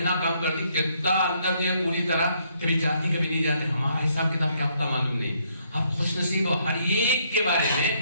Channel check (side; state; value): both; inverted; correlation -0.70